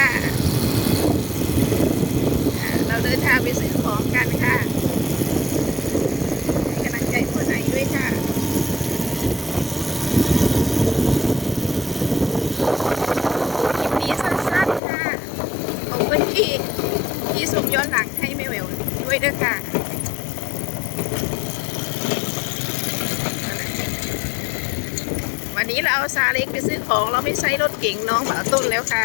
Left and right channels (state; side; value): drops out; right; at 14.8 s